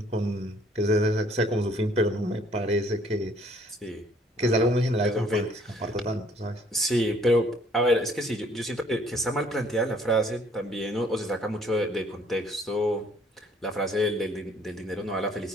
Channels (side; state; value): both; normal; correlation 0.60